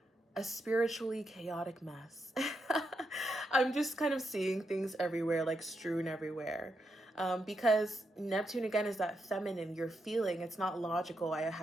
a spiritually chaotic mess. I'm just kind of seeing things everywhere, like strewn everywhere. Because Neptune, again, is that feminine, you're feeling. It's not logical. I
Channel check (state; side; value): normal; both; correlation 0.83